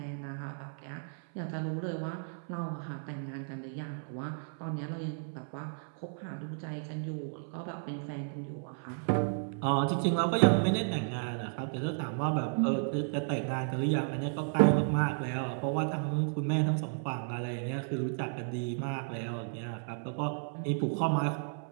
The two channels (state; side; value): silent; left; 55 dB below the other